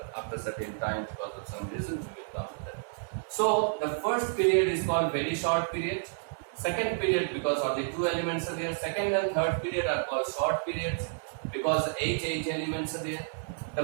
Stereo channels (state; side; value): silent; left; digital silence